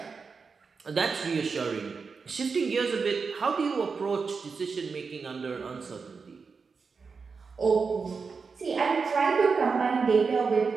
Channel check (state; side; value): quieter; left; 5.1 dB